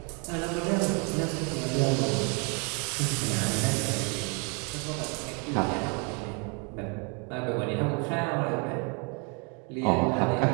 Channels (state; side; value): quieter; left; 34.3 dB